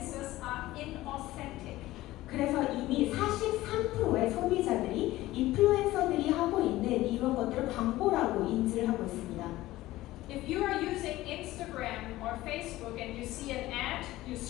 are inauthentic. 그래서 이미 43%의 소비자들이 인플루엔서들이 하고 있는 이런 것들을 광고라고 인지를 하고 있습니다. If you are using Instagram or Facebook and you see an ad, you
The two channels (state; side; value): quieter; right; 16.8 dB